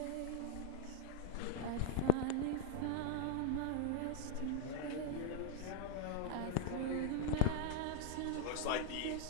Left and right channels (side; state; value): both; different; correlation -0.01